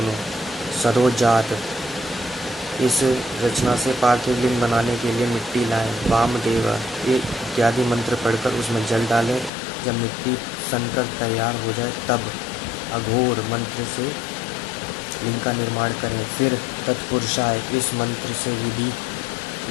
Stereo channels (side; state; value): right; drops out; at 9.5 s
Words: सरोजात, इस रचना से पार्थिव लिंग बनाने के लिए मिट्टी लाएं। वामदेव, ये इत्यादि मंत्र पढ़कर उसमें जल डालें। जब मिट्टी सनकर तैयार हो जाए तब अघोर मंत्र से लिंग का निर्माण करें। फिर तत्पुरुषाय, इस मंत्र से विधि